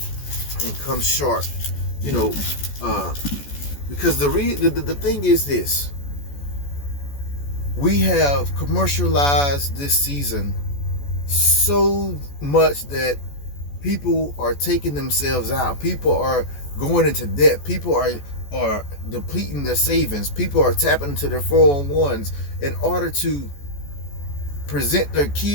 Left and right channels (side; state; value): right; late; 14 ms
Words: and come short. You know, because the thing is this. We have commercialized this season so much that people are taking themselves out. People are going into debt. People are depleting their savings. People are tapping into their 401s in order to present their